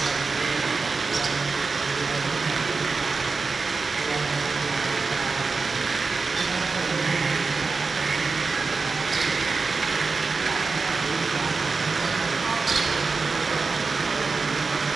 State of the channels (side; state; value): left; quieter; 4.3 dB